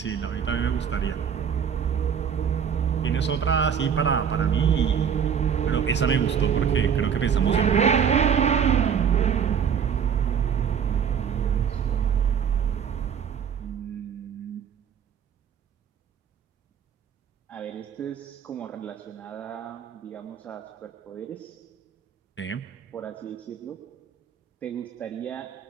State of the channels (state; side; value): quieter; left; 7.6 dB